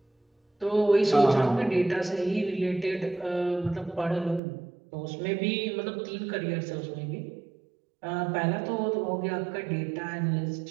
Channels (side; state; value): left; drops out; at 4.4 s